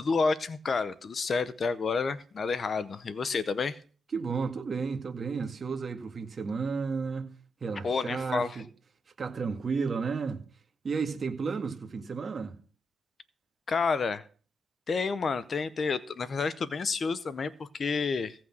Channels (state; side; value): normal; both; correlation 0.83